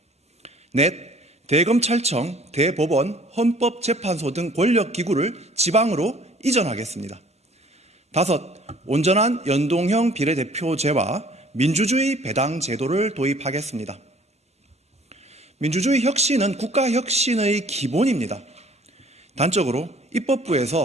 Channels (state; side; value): normal; both; correlation 0.55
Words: 넷, 대검찰청, 대법원, 헌법재판소 등 권력기구를 지방으로 이전하겠습니다. 다섯, 온전한 연동형 비례대표제와 민주주의 배당 제도를 도입하겠습니다. 민주주의 혁신은 국가혁신의 기본입니다. 단적으로